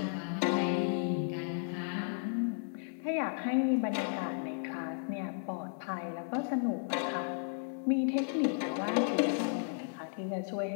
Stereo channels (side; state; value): right; silent; 55 dB below the other